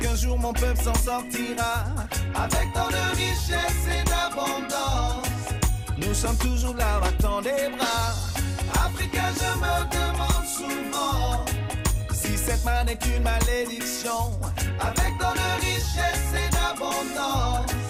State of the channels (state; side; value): identical; both; correlation 1.00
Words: qu'un jour mon peuple s'en sortira avec tant de richesse et d'abondance? Nous sommes toujours là, battant des bras. Africain, je me demande souvent si cette manne est une malédiction. Avec tant de richesse et d'abondance,